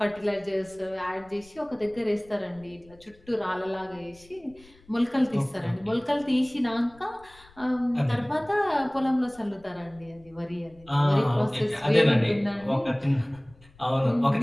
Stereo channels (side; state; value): left; noise; rumble, 26 dB below the sound